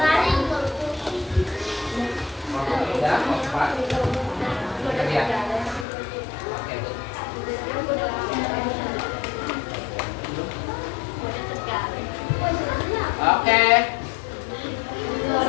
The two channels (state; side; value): drops out; right; at 5.9 s